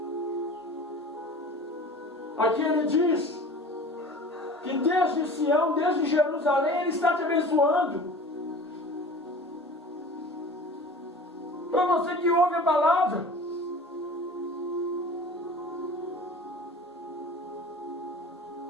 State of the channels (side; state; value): both; normal; correlation 0.40